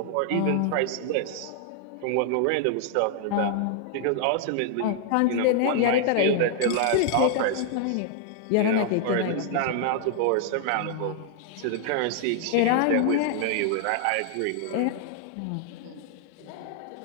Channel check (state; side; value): different; both; correlation 0.00